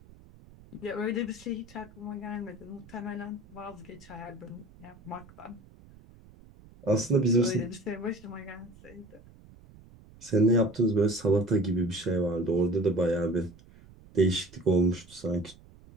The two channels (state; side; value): noise; right; rumble, 23 dB below the sound